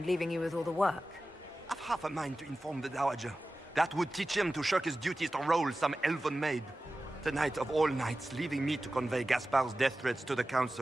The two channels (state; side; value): normal; both; correlation 0.95